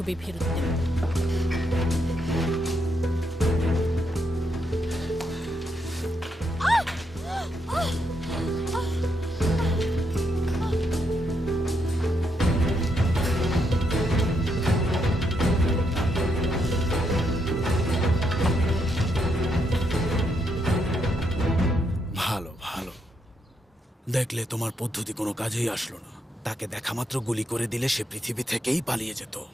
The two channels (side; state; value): both; normal; correlation 0.78